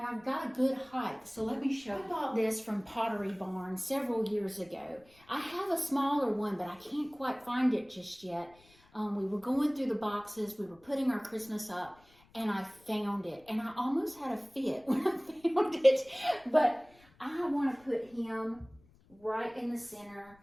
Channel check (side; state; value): left; noise; rumble, 29 dB below the sound